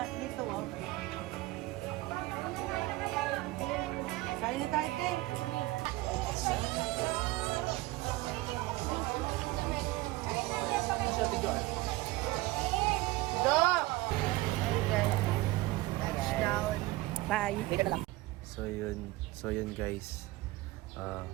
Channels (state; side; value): quieter; left; 19.3 dB